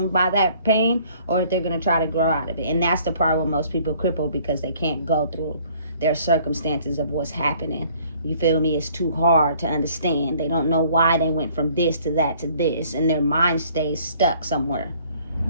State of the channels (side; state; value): both; inverted; correlation -0.58